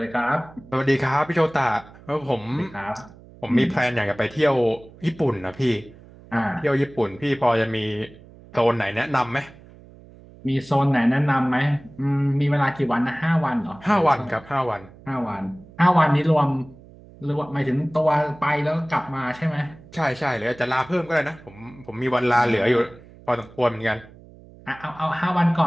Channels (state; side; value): noise; right; hum, 22 dB below the sound